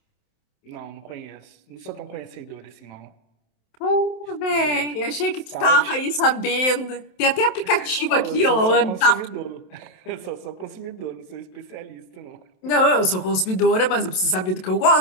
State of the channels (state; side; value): late; right; 27 ms